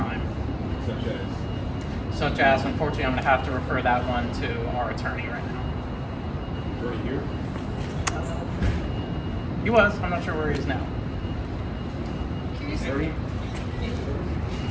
Such as, unfortunately, I'm going to have to refer that one to our attorney right now. Attorney here? He was. I'm not sure where he is now. Attorney?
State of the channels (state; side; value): identical; both; correlation 1.00